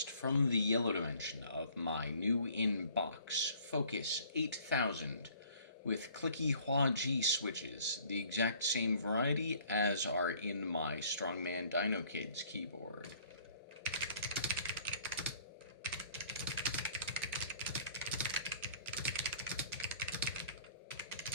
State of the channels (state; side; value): inverted; both; correlation -0.54